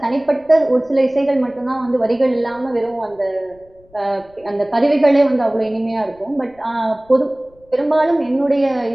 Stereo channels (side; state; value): left; noise; rumble, 30 dB below the sound